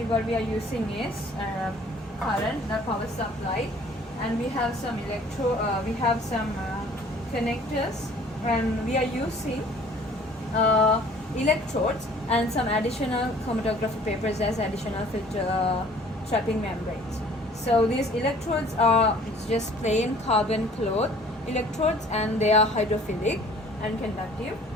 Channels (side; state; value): both; normal; correlation 0.53